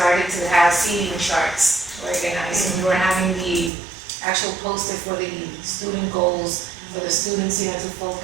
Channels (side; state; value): left; drops out; at 3.7 s